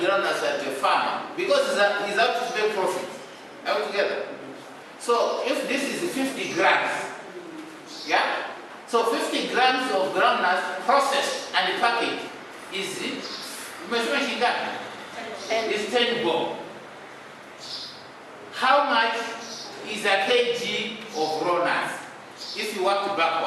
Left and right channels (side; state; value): both; identical; correlation 1.00